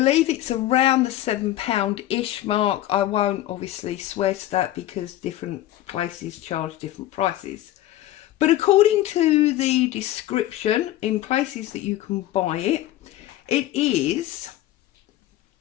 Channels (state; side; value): quieter; right; 14.2 dB